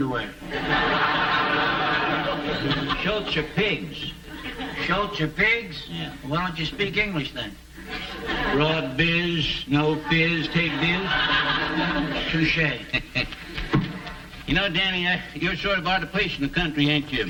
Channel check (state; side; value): identical; both; correlation 1.00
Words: Schultz are pigs. Schultz are pigs? Yeah. Well, why don't you speak English then? Broad biz, no fizz, take biz. Touché. You know, Danny, you're sort of out of place in the country, ain't you?